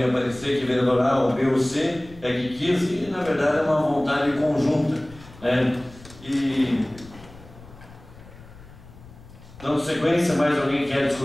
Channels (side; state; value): left; noise; rumble, 20 dB below the sound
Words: aparecer que vereador A ou B ou C é que quis, e na verdade é uma vontade conjunta, né? E dando sequência, mais alguém quer